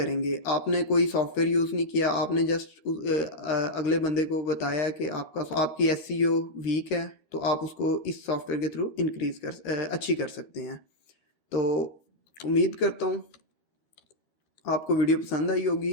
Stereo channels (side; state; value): right; late; 13 ms